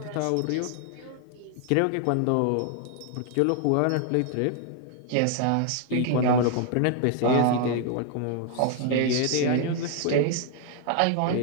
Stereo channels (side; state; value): both; different; correlation 0.00